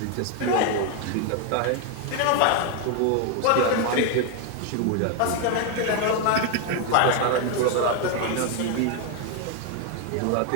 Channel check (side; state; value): both; different; correlation 0.01